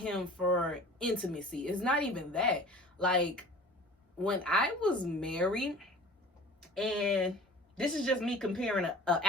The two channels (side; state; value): both; normal; correlation 0.43